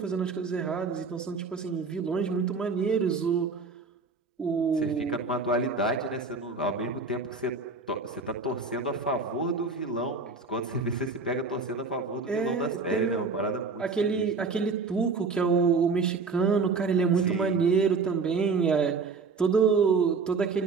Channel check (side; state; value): left; quieter; 4.4 dB